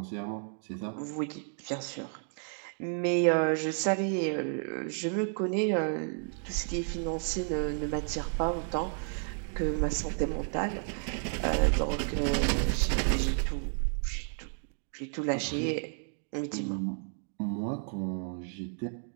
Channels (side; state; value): left; silent; 57 dB below the other